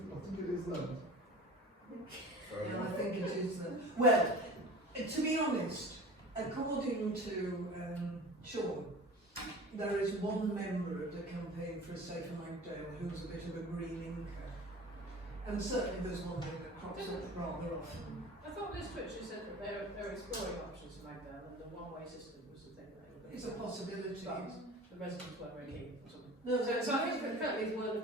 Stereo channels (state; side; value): normal; both; correlation 0.39